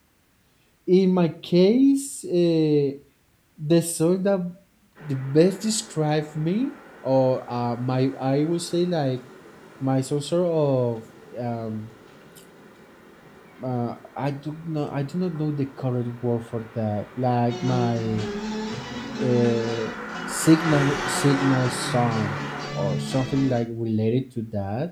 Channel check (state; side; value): identical; both; correlation 1.00